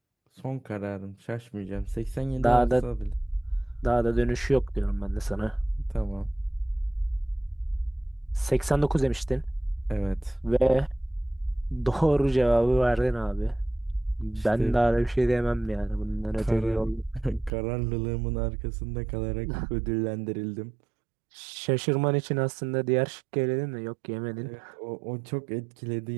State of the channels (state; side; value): drops out; left; at 17.5 s